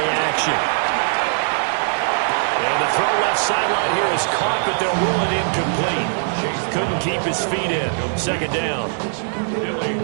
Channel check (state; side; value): silent; left; digital silence